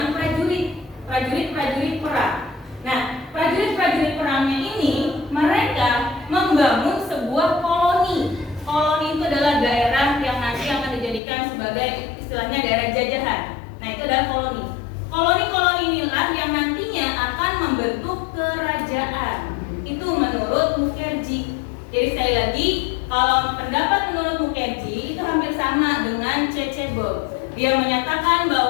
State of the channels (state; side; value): drops out; right; at 11.2 s